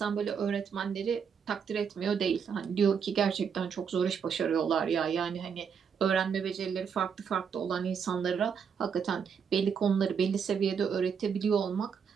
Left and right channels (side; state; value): left; quieter; 6.8 dB